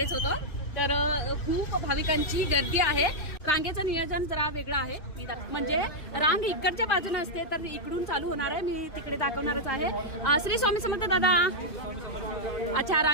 होतो. तर खूप भाविकांची गर्दी आहे. रांगेचं नियोजन जरा वेगळं आहे. म्हणजे रांग इकडच्या बाजूने असते तर इकडून चालू होणार आहे. मी तिकडे दाखवणारच आहे. श्री स्वामी समर्थ दादा. अच्छा,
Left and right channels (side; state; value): right; late; 2.5 ms